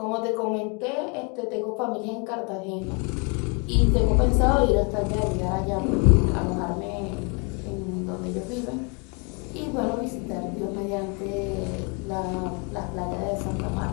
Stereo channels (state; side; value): quieter; right; 33.4 dB